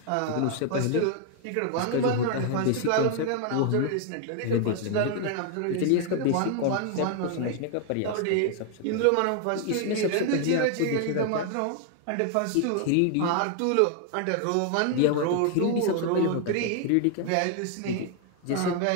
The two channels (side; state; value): both; different; correlation 0.00